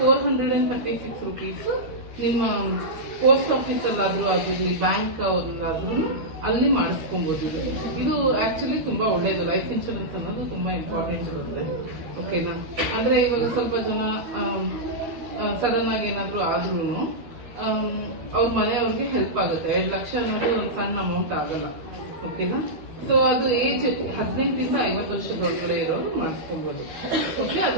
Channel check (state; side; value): late; left; 13 ms